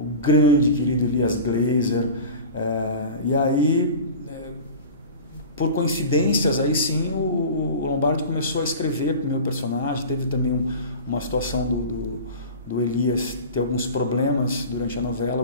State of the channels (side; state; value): both; inverted; correlation -0.35